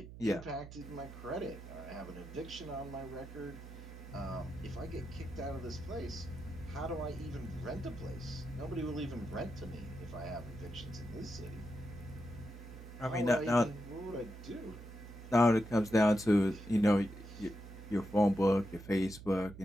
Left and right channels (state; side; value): noise; right; hum, 13 dB below the sound